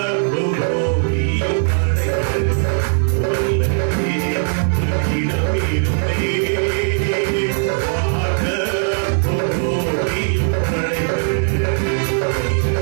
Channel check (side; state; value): left; silent; 67 dB below the other